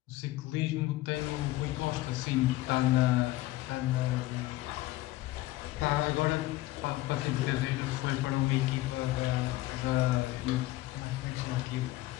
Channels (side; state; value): right; quieter; 17.3 dB